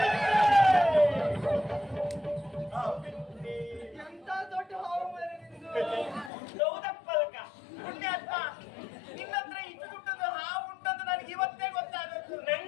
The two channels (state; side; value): drops out; right; at 6.3 s